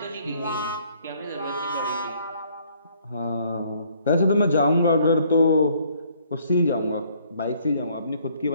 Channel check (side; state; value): both; inverted; correlation -0.63